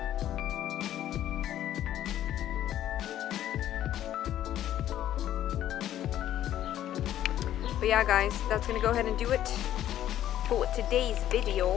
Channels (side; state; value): right; quieter; 12.0 dB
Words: But yeah guys, that's gonna go ahead and do it for today's